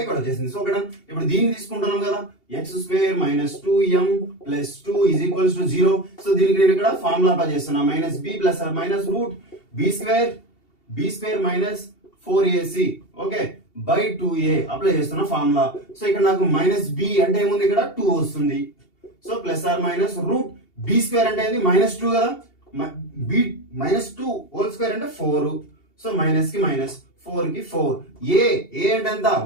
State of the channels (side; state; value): right; late; 2.7 ms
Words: ఇక్కడ వచ్చేసింది. సో ఇక్కడ ఇప్పుడు దీన్ని తీసుకుంటున్నాం కదా, x square -2m plus 2 is equals to 0. So దీనికి నేను ఇక్కడ ఫార్ములా అప్లై చేస్తున్నా, -b plus or minus root b square minus 4ac okay by 2a apply చేస్తున్న ఫార్ములా. సో ఇక్కడ నాకు -b అంటే ఏముంది, ఇక్కడ 2 వస్తుంది. సో plus or minus root b square అంటే ఏంది -2 కదా, b -2 హోల్ స్క్వేర్ అంటే 4. సో మైనస్ కి మైనస్, 4 కి 4, a అంటే ఎంత